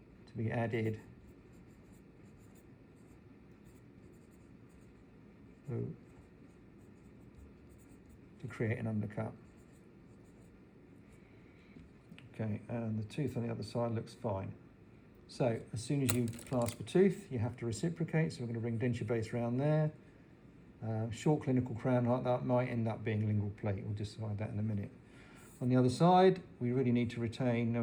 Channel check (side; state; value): both; identical; correlation 1.00